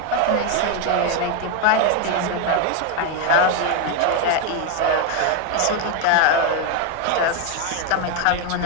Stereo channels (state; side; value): different; both; correlation 0.01